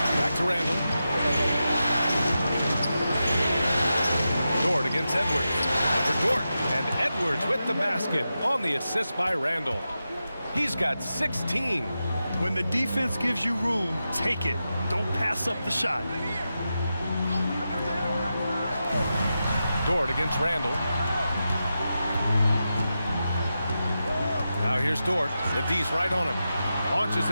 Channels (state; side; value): inverted; both; correlation -0.90